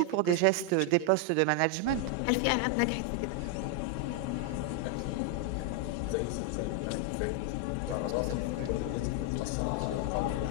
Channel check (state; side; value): different; both; correlation 0.01